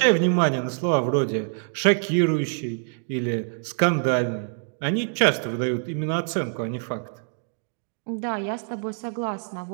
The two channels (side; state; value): left; silent; 62 dB below the other